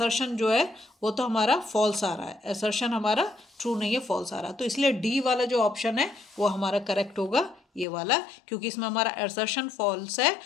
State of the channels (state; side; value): drops out; right; at 7.9 s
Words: जो है वो तो हमारा फॉल्स आ रहा है, असर्शन हमारा ट्रू नहीं है, फॉल्स आ रहा है, तो इसलिए डी वाला जो ऑप्शन है वो हमारा करेक्ट होगा, ये वाला, क्योंकि इसमें हमारा असर्शन फॉल्स है